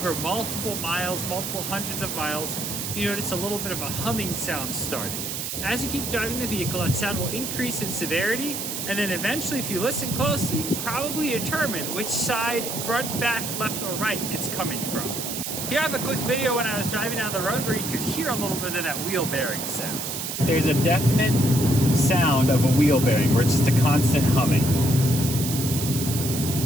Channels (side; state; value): right; noise; hiss, 4 dB below the sound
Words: multiple miles, multiple hundreds of miles, you notice a little bit of a humming sound starting. As you keep driving the vehicle, that sound will increase in severity, and then eventually, if you listen closely, you can probably determine which side, front, back, left, or right it's coming from. Here I have a quick video when I was driving down the road where you could hear a little bit of that wheel bearing sound. There's a definite sound of a wheel bearing where it's just a constant humming.